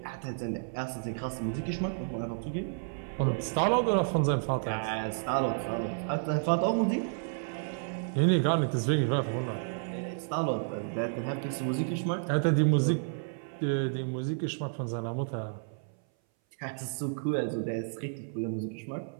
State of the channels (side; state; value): left; silent; 57 dB below the other